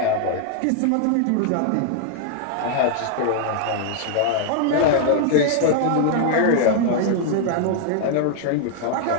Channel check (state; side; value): different; both; correlation 0.00